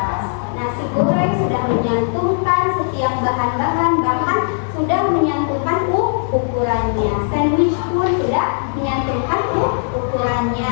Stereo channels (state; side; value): silent; right; 63 dB below the other